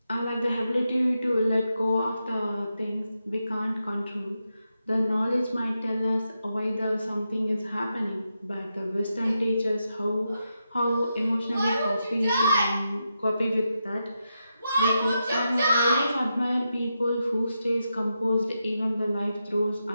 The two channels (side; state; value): both; inverted; correlation -0.86